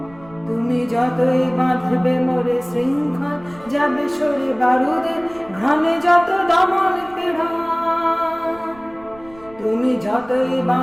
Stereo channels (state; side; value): noise; right; rumble, 23 dB below the sound